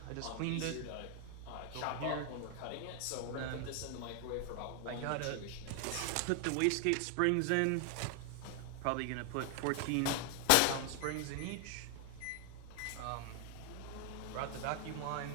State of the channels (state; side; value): different; both; correlation 0.00